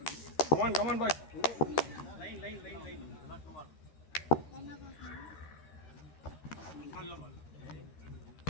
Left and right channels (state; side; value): late; right; 13 ms